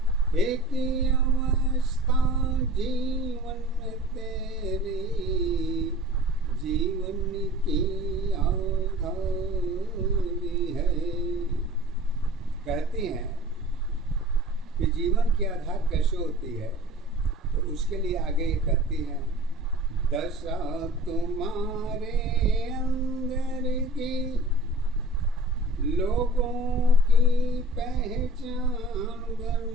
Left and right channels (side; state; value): both; normal; correlation 0.43